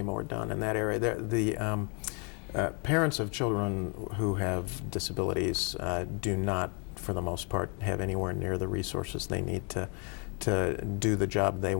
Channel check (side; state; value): right; quieter; 37.4 dB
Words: more done in that area. Parents of children who have disabilities do not, for the most part, have anywhere near the resources they need to do the job they